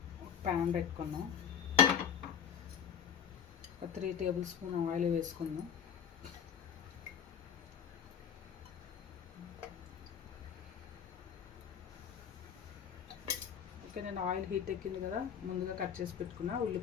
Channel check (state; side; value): quieter; right; 8.1 dB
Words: ప్యాన్ పెట్టుకున్నాం, ఒక 3 టేబుల్ స్పూన్ ఆయిల్ వేసుకుందాం. ఓకే, నేను ఆయిల్ హీట్ ఎక్కింది కదా, ముందుగా కట్ చేసి పెట్టుకున్నా